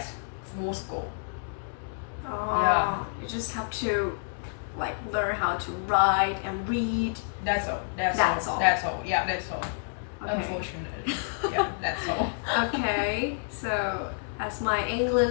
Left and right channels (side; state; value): right; silent; digital silence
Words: full score. You just have to like learn how to write and read. That's all. That's all. Yeah, that's all. Okay. Unfortunately, yeah, that's all. Okay, so as my